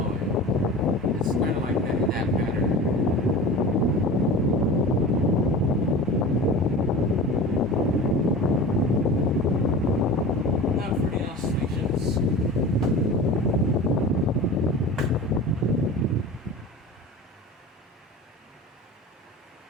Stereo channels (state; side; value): normal; both; correlation 0.34